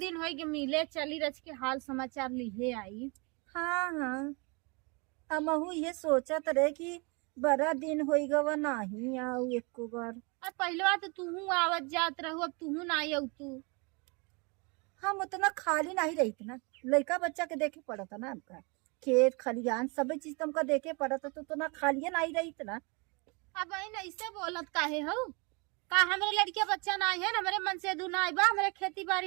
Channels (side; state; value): left; quieter; 30.7 dB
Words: हो गए मिले, चली रच के हाल समाचार लिहे आई। हाँ हाँ, हमहू ये सोचत रहे कि बड़ा दिन हो गवा नहीं आऊ एको बार। अब पहले तो तूहू आवत जात रहू, अब तूहू ना आई तू। हम उतना खाली नहीं रही ना, लड़का बच्चा के देखे पड़ता ना, हमका खेत खलियान सब चीज तुमका देखे पड़ता, तो उतना खाली नहीं रही ना। अब बहन ऐसे बोलत काहे हो? का हमारे लड़के बच्चा ना है, हमारे मन से दू ना बा, हमारे खेती